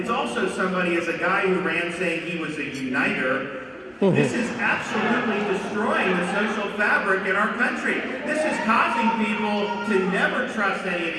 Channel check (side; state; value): both; identical; correlation 1.00